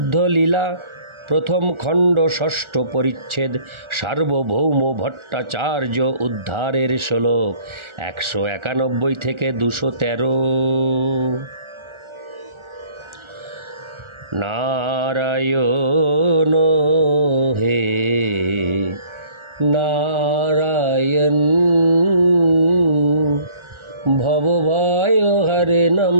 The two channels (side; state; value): left; late; 1.4 ms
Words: প্রথম খণ্ড ষষ্ঠ পরিচ্ছেদ সার্বভৌম ভট্টাচার্য উদ্ধারের শ্লোক 191 থেকে 213। নারায়ণ হে নারায়ণ ভবভয় হরণম